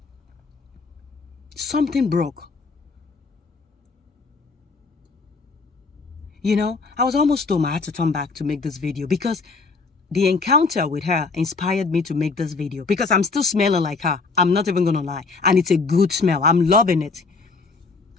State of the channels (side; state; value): right; quieter; 4.3 dB